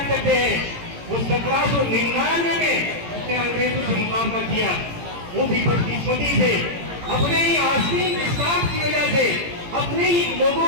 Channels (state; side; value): late; left; 17 ms